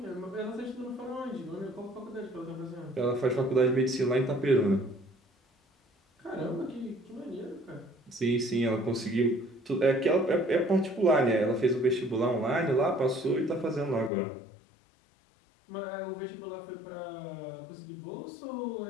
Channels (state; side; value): drops out; right; at 14.1 s